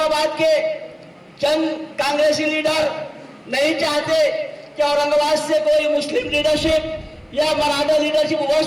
के चंद कांग्रेसी लीडर नहीं चाहते कि औरंगाबाद से कोई मुस्लिम लीडरशिप या मराठा लीडरशिप हो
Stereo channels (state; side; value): identical; both; correlation 1.00